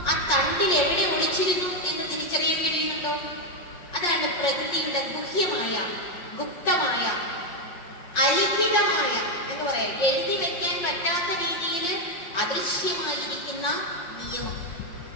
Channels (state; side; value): late; right; 5.7 ms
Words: ആ തണ്ടിൽ എവിടെ ഒളിച്ചിരുന്നു എന്ന് തിരിച്ചറിയാൻ കഴിയുന്നുണ്ടോ? അതാണ് പ്രകൃതിയുടെ ഗുഹ്യമായ, ഗുപ്തമായ, അലിഖിതമായ എന്ന് പറയാം, എഴുതി വെക്കാൻ പറ്റാത്ത രീതിയിൽ അദൃശ്യമായിരിക്കുന്ന നിയമം.